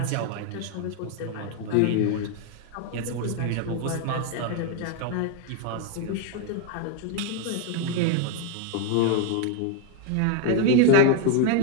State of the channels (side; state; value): both; different; correlation 0.01